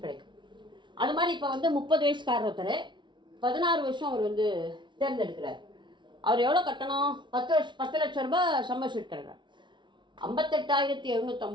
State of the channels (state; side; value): late; left; 0.23 ms